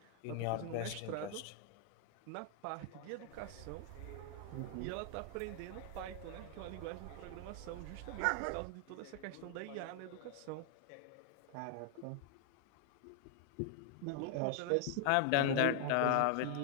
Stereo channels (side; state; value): both; different; correlation 0.00